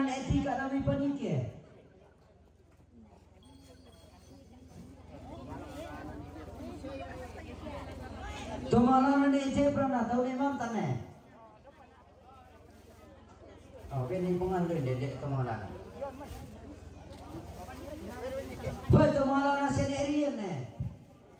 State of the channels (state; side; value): identical; both; correlation 1.00